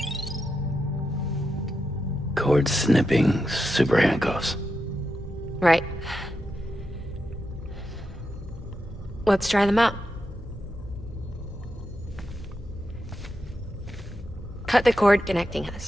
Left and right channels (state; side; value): normal; both; correlation 0.87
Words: Cord snipping, super handcuffs. Right. Let's try them out. Cut the cord connecting